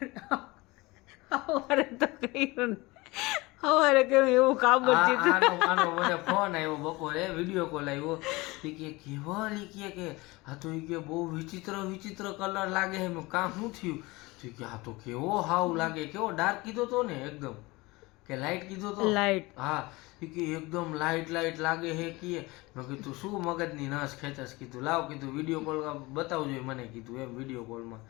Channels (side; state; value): right; quieter; 22.5 dB